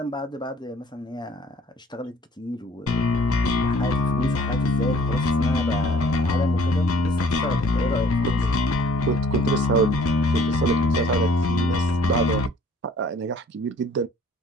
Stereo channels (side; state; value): both; normal; correlation 0.55